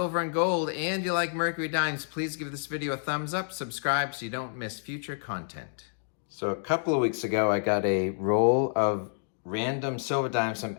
and gold and you like Mercury dimes, please give this video a thumbs up, subscribe so you don't miss future content. So a couple of weeks ago, I got a roll of random silver dimes from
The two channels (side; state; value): right; silent; 59 dB below the other